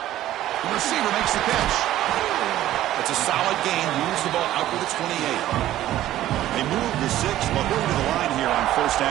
The receiver makes the catch. It's a solid gain. Moves the ball out to the 28. They move the 6, but going to the line here on first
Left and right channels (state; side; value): quieter; left; 13.7 dB